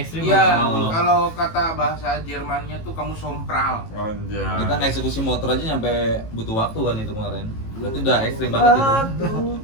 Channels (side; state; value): right; late; 18 ms